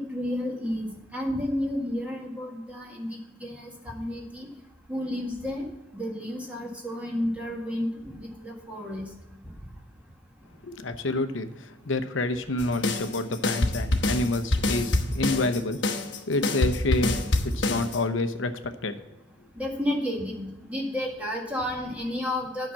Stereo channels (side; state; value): both; normal; correlation 0.58